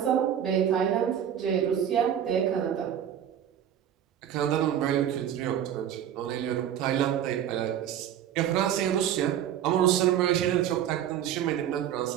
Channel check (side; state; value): left; quieter; 10.0 dB